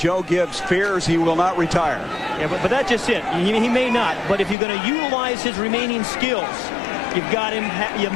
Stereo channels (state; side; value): drops out; right; at 4.5 s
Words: Gibbs fears he will not retire. Yeah, but that's just it. He may not. But if you're going to utilize his remaining skills, you've got him. You